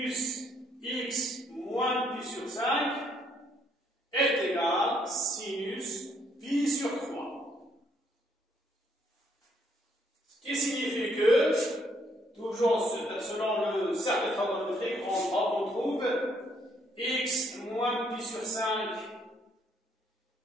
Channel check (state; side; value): normal; both; correlation 0.69